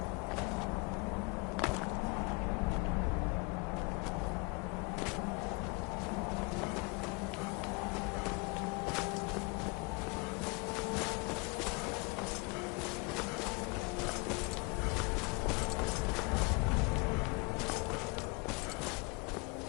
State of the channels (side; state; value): right; quieter; 29.1 dB